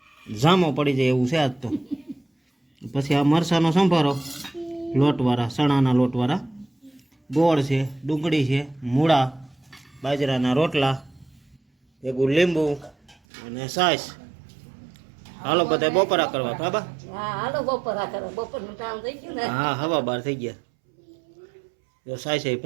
જામો પડી જાય એવું છે આજ તો પછી આ મરસાનો સંભારો લોટવાળા ચણાના લોટવાળા ગોળ છે ડુંગળી છે મૂળા બાજરાના રોટલા ભેગું લીંબુ અને છાશ હાલો બધા બપોરા કરવા બાબા હા હાલો બપોરા કરો બપોરનું કામ થઈ ગયું ને હા હવા બાર થઈ ગયા જો છાશ એ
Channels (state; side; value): drops out; left; at 13.2 s